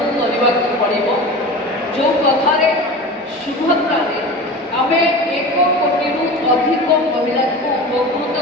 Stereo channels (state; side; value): normal; both; correlation 0.32